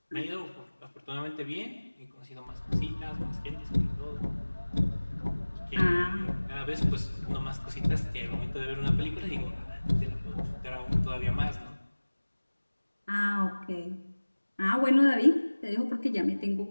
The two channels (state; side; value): inverted; both; correlation -1.00